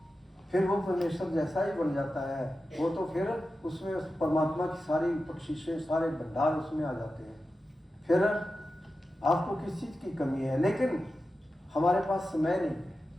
फिर वो परमेश्वर जैसा ही बन जाता है। वो तो फिर उसमें उस परमात्मा की सारी बख्शिशें, सारे भंडार उसमें आ जाते हैं। फिर आपको किस चीज़ की कमी है, लेकिन हमारे पास समय नहीं,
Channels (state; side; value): normal; both; correlation 0.92